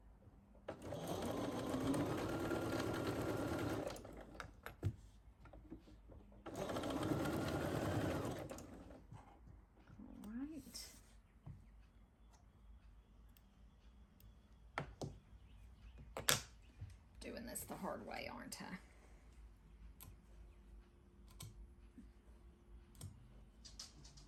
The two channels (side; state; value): both; identical; correlation 1.00